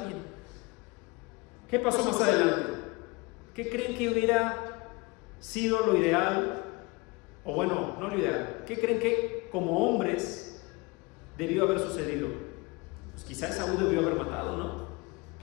¿Qué pasó más adelante? ¿Qué creen que hubiera sido lo ideal? O bueno, no lo ideal. ¿Qué creen que como hombres debió haber sucedido? Pues quizá Esaú debió haber matado, ¿no?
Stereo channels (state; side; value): quieter; right; 25.6 dB